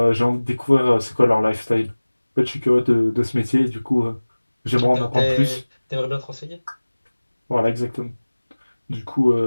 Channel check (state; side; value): inverted; both; correlation -1.00